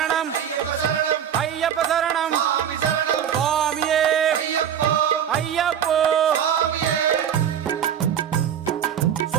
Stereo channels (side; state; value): left; quieter; 9.1 dB